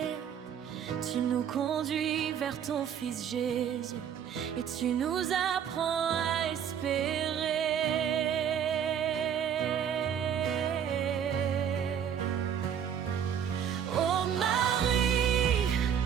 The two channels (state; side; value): quieter; left; 8.5 dB